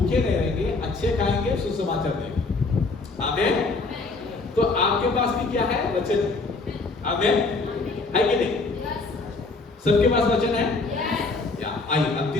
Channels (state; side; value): quieter; right; 3.7 dB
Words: नहीं रहेंगे, अच्छे खाएंगे, सुसमाचार देंगे। आमीन। तो आपके पास भी क्या है, वचन। आमीन। है कि नहीं? सबके पास वचन है। या आइए अब